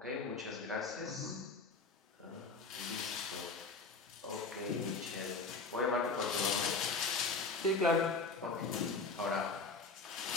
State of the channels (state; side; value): quieter; right; 4.1 dB